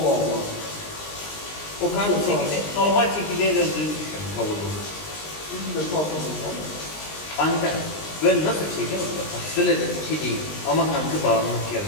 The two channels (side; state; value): right; late; 20 ms